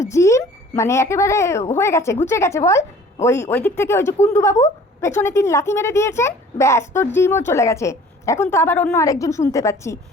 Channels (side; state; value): both; normal; correlation 0.50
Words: জিম মানে একেবারে হয়ে গেছে, ঘুচে গেছে বল। ওই দিক থেকে ওই যে কুণ্ডুবাবু পেছনে 3 লাথি মেরে দিয়েছেন, ব্যাস তোর জিমও চলে গেছে। এখন তো আবার অন্য আরেকজন শুনতে পাচ্ছি,